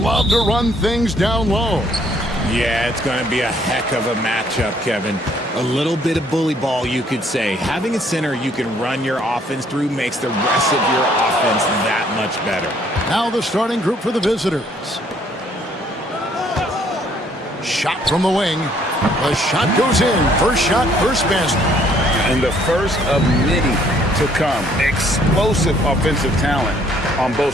to run things down low. Yeah, it's going to be a heck of a matchup, Kevin. A little bit of bully ball, you could say. Having a center you can run your offense through makes the rest of your offense that much better. Now the starting group for the visitors. Shot from the wing. The shot goes in. First shot, first basket. And the first of many to come. Explosive offensive talent on both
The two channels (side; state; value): both; normal; correlation 0.64